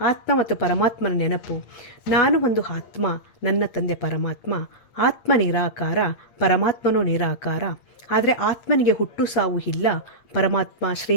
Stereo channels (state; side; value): late; right; 8.7 ms